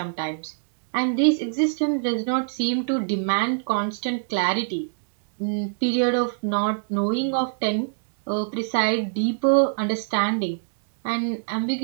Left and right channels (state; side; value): silent; left; digital silence